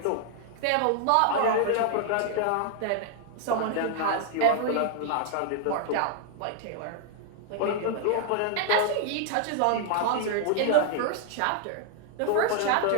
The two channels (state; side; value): different; both; correlation 0.00